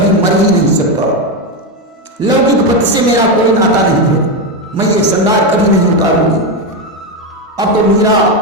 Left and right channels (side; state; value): both; normal; correlation 0.09